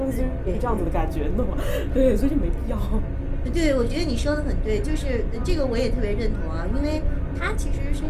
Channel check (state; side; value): identical; both; correlation 1.00